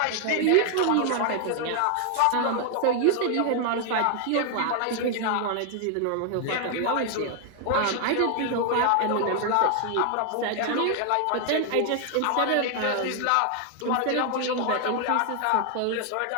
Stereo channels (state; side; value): different; both; correlation 0.00